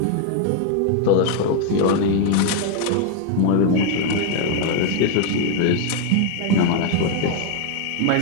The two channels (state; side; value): different; both; correlation 0.00